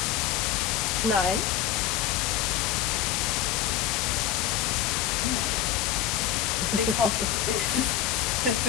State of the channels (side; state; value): right; quieter; 10.8 dB